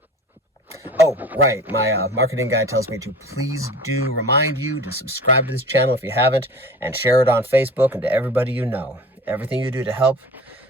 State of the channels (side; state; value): both; normal; correlation 0.40